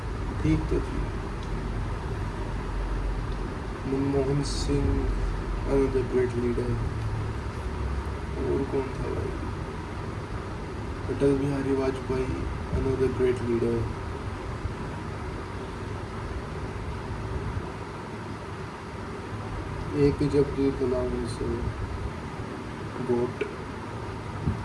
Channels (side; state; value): both; identical; correlation 1.00